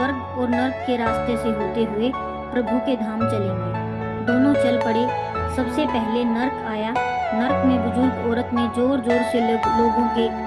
और नर्क के रास्ते से होते हुए प्रभु के धाम चलेंगे। दोनों चल पड़े। सबसे पहले नर्क आया। नर्क में बुजुर्ग औरत ने जोर जोर से लोगों के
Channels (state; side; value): identical; both; correlation 1.00